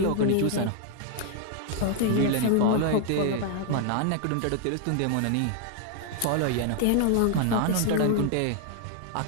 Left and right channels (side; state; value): both; different; correlation 0.00